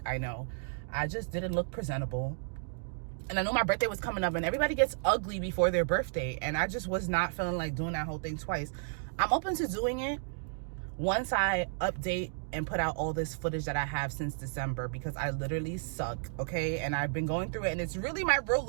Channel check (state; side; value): silent; left; digital silence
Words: I know. I just didn't look presentable, and I know my birthday was coming up, and everybody gets ugly before their birthday, and I just was not feeling like doing that whole thing twice. I'm open to doing it, once I update and put out all this footage that I have since December, because I literally suck, okay? And I've been going through it, and it's really my real